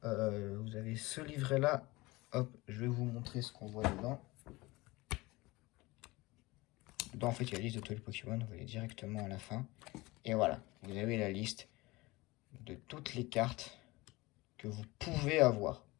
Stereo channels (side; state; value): right; quieter; 21.5 dB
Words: vous avez ce livret-là. Hop, je vais vous montrer ce qu'on voit dedans. Dedans, en fait, il y a la liste de tous les Pokémon, vous allez directement à la fin. Et voilà, vous avez la liste de toutes les cartes que vous pouvez avoir.